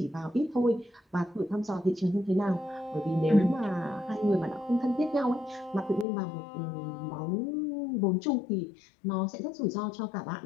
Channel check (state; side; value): drops out; right; at 6.1 s